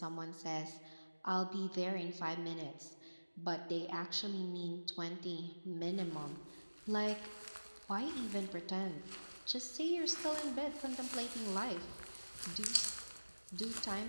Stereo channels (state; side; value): inverted; both; correlation -1.00